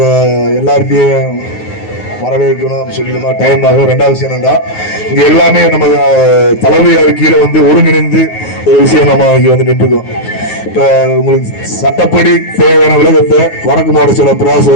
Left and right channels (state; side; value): late; right; 9.5 ms